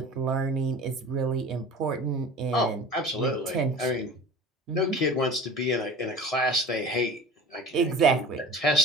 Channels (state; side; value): normal; both; correlation 0.39